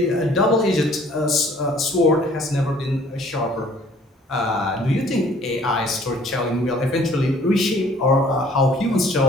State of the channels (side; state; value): both; normal; correlation 0.56